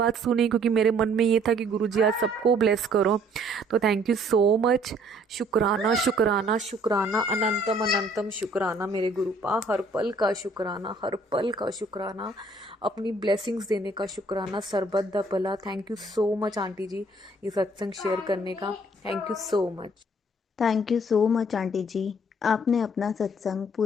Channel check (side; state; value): both; normal; correlation 0.60